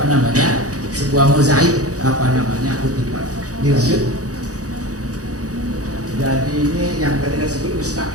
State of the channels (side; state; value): left; late; 0.67 ms